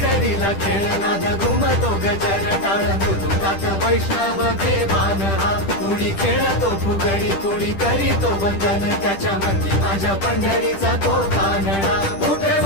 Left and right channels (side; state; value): right; late; 10 ms